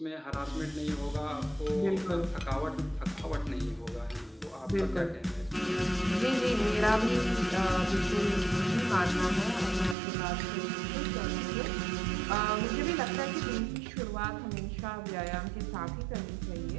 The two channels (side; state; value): left; drops out; at 10.0 s